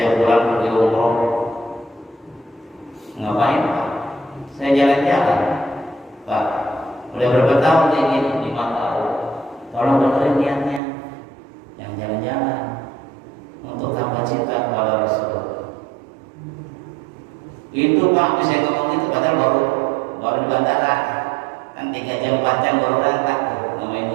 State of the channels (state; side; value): drops out; left; at 10.8 s